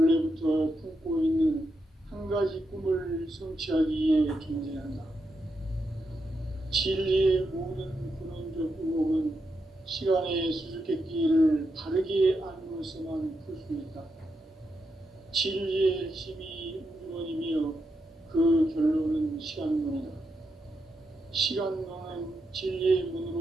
품고 있는 한 가지 꿈을 성취하기 위해 존재한다. 진리의 모든 근원적 의혹은 시간의 수수께끼를 바르게 알므로서만 풀 수 있다. 진리의 핵심이 우주론이며 그 결론은 시간론이다. 시간론은 진리의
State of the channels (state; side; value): normal; both; correlation 0.84